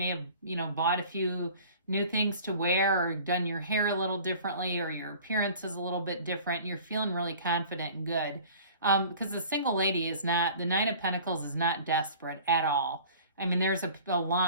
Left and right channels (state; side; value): inverted; both; correlation -0.45